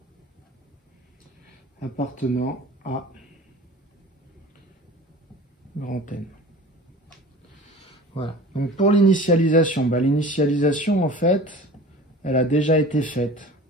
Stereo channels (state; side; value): normal; both; correlation 0.39